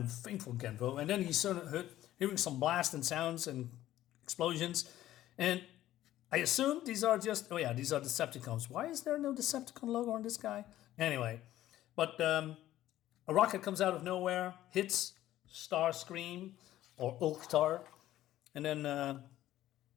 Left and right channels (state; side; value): quieter; right; 13.8 dB